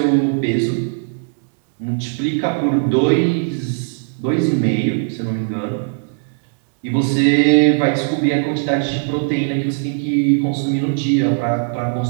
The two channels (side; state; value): left; silent; digital silence